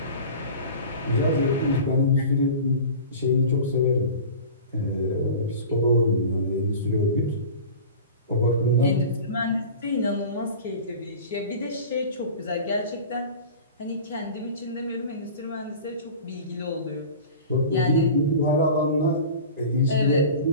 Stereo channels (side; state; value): both; inverted; correlation -0.37